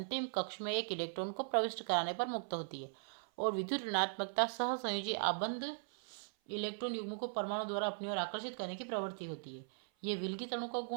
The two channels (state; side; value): silent; left; 52 dB below the other